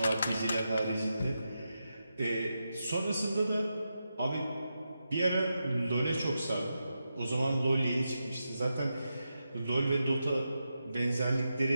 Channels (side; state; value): both; inverted; correlation -0.88